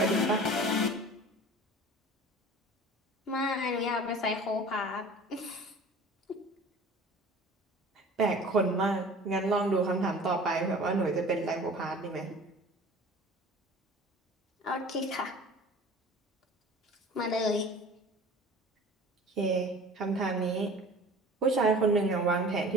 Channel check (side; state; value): both; normal; correlation 0.43